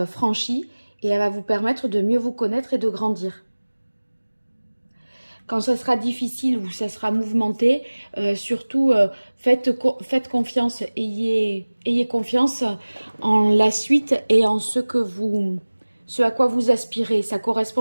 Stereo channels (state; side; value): inverted; both; correlation -1.00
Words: franchie et elle va vous permettre de mieux vous connaître et de grandir. Quand ça sera difficile ou ça sera mouvementé, surtout faites confiance, ayez confiance en la suite et en ce à quoi vous aspirez. Ça